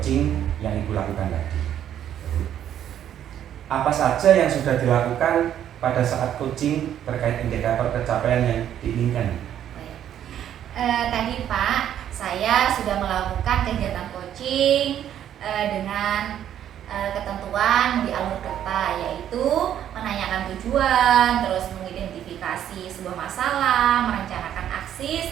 yang Ibu lakukan tadi. Apa saja yang sudah dilakukan pada saat coaching terkait indikator pencapaian yang diinginkan? Tadi Pak, saya sudah melakukan kegiatan coaching dengan ketentuan di alur kerta, yaitu menanyakan tujuan, terus mengidentifikasi sebuah masalah, merencanakan aksi,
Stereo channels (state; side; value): quieter; left; 10.4 dB